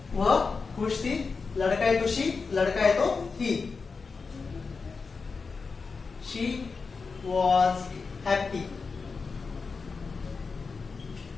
वह खुश थी, लड़का है तो शी, लड़का है तो ही। She was happy.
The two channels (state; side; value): quieter; right; 4.7 dB